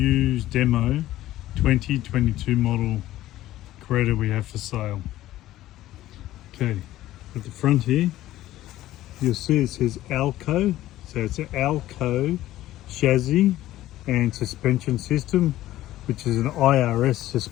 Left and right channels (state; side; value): quieter; right; 14.8 dB